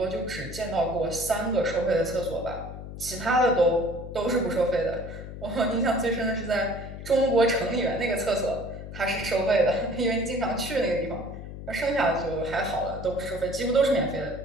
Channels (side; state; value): left; noise; hum, 10 dB below the sound